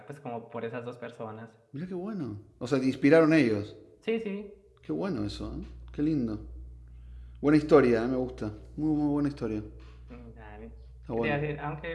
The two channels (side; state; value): both; identical; correlation 1.00